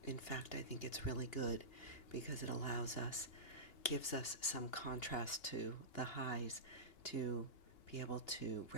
In fact, I think it's really good because it gives us some contrast to the highs to be able to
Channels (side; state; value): right; late; 2.8 ms